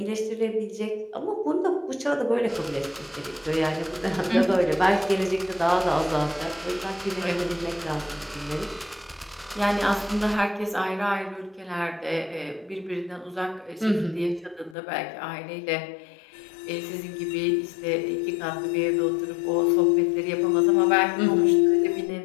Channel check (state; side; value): drops out; right; at 14.8 s